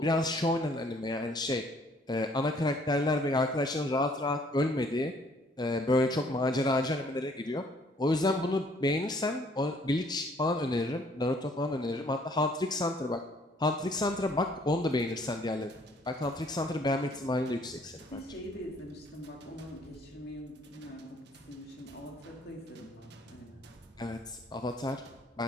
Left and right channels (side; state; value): both; normal; correlation 0.61